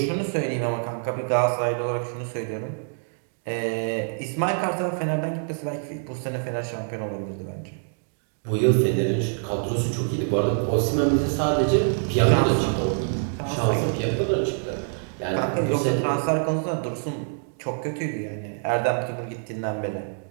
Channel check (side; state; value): left; silent; digital silence